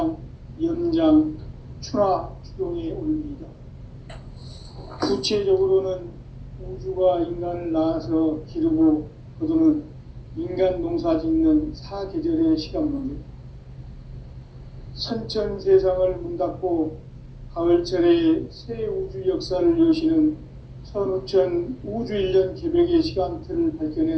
연장, 추나, 추동의 원리이다. 구체적으로는 우주가 인간을 낳아서 기르고 거두는 인간 농사 짓는 사계절의 시간 문제. 선천 세상을 문 닫고 가을철에 새 우주 역사를 여시는 선우천 우주일년 개벽의 시간틀을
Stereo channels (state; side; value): identical; both; correlation 1.00